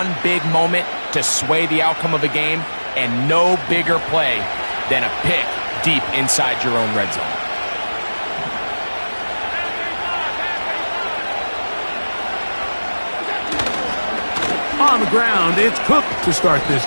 big moment to sway the outcome of a game, and no bigger play than a pick deep inside your own red zone. On the ground, it's Cook to start this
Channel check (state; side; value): inverted; both; correlation -1.00